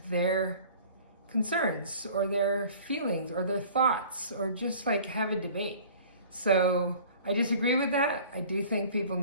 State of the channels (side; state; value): both; inverted; correlation -0.47